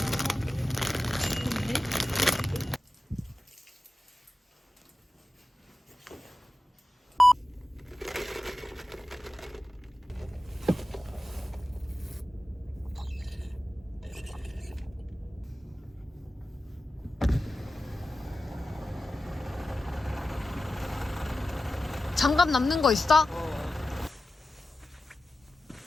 장갑 남는 거 있어?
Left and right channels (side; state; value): both; normal; correlation 0.94